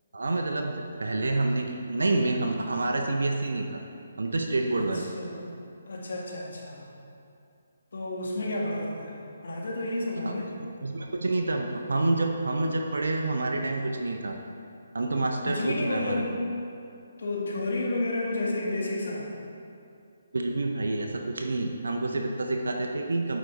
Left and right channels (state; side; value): inverted; both; correlation -0.87